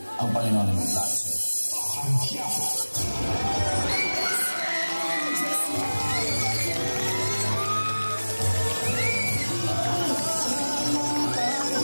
ang Panginoon ang may plano sa'yo.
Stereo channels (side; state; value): both; inverted; correlation -1.00